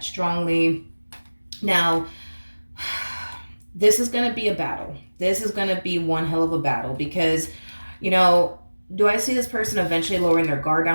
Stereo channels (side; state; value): both; inverted; correlation -1.00